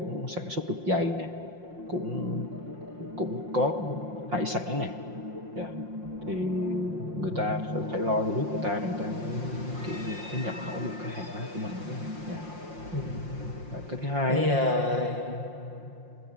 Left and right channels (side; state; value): left; late; 5.7 ms